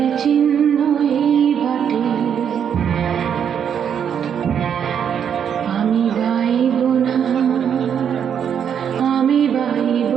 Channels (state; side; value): quieter; left; 8.2 dB